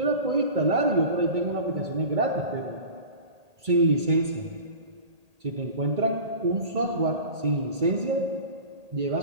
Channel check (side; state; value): left; late; 1.8 ms